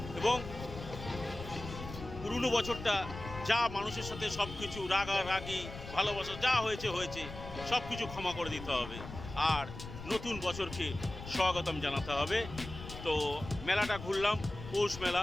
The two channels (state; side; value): noise; left; rumble, 11 dB below the sound